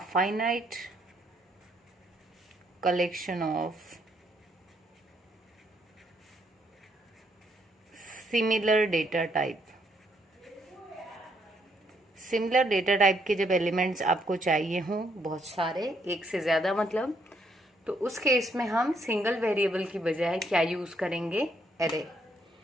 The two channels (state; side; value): normal; both; correlation 0.72